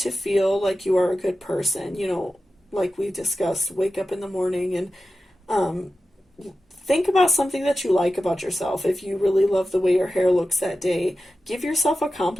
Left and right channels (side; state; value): both; normal; correlation 0.93